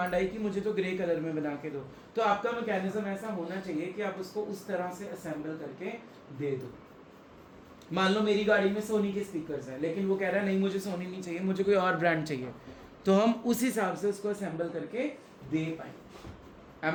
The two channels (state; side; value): identical; both; correlation 1.00